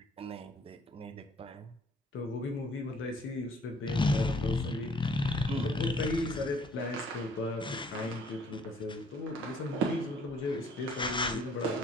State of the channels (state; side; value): normal; both; correlation 0.60